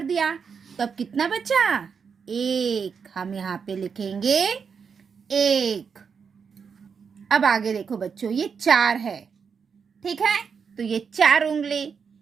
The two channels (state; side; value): quieter; left; 6.2 dB